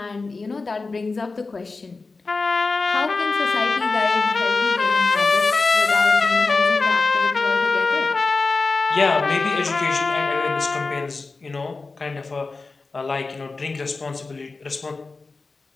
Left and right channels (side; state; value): right; quieter; 3.9 dB